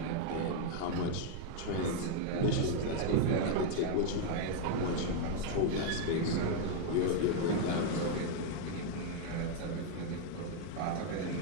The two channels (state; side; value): different; both; correlation 0.00